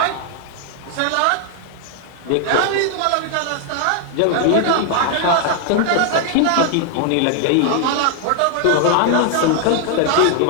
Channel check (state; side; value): different; both; correlation 0.00